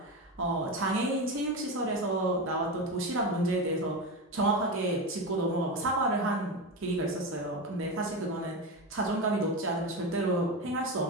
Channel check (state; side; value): normal; both; correlation 0.18